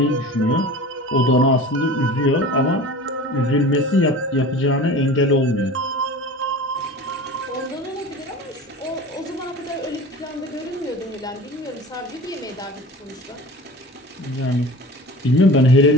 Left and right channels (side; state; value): both; normal; correlation 0.37